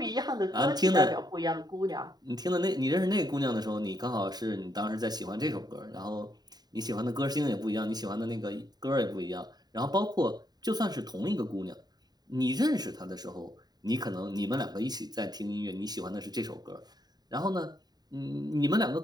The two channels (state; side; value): late; left; 0.20 ms